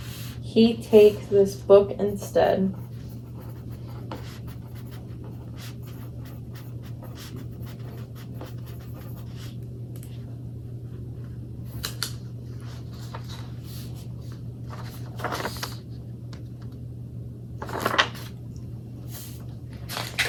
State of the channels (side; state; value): both; identical; correlation 1.00